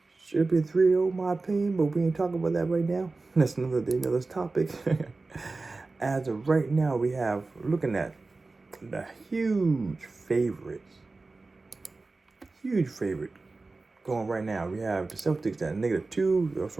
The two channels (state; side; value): quieter; left; 3.6 dB